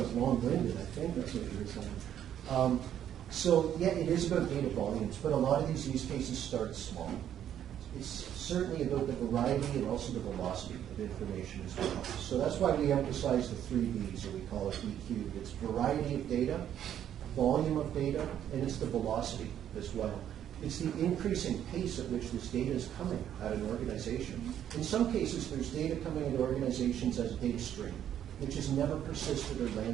long-winded. I think that's what you were saying. So yeah, it is about data volumes, but a lot of these use cases start small. It's certainly about the variety and also the velocity of information as well. So that's why we emphasize the 3 V's, or we call it EQ. It's variety of data, volume of data, and it's the velocity as well. It's the increasing pace at which this data is coming at an organization. In some cases, there's data coming into organizations as a data stream, which has never persisted or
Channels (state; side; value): quieter; left; 10.3 dB